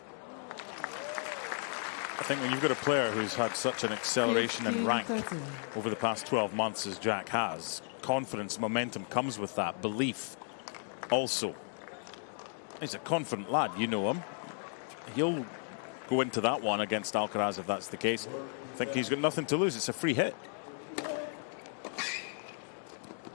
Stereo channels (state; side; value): silent; right; 55 dB below the other